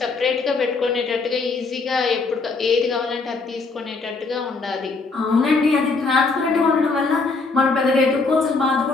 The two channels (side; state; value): right; quieter; 4.0 dB